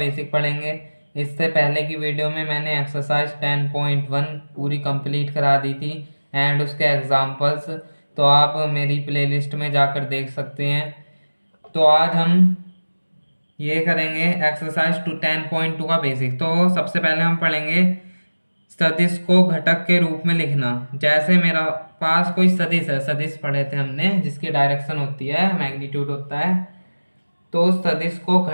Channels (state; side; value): inverted; both; correlation -1.00